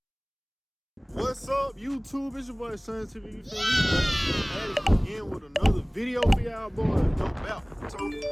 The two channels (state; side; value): identical; both; correlation 1.00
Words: What's up, YouTube? It's your boy Son TV. You feel me? Back again with another video for y'all boys. No doubt. So